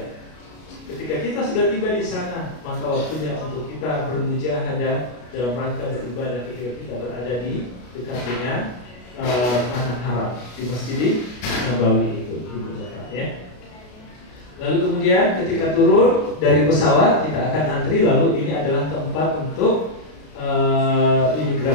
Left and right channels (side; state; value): right; late; 33 ms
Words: Ketika kita sudah tiba di sana, maka waktunya untuk kita bermujahadah dalam rangka beribadah ketika kita berada di dekat dengan tanah haram di Masjid Nabawi itu, Ibu Bapak, ya. Lalu kemudian ketika turun dari pesawat kita akan antri, lalu ini adalah tempat untuk